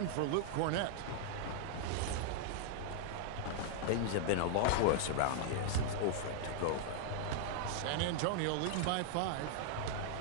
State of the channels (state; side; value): different; both; correlation -0.01